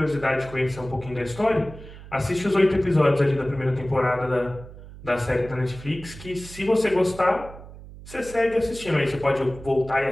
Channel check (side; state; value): right; noise; hum, 16 dB below the sound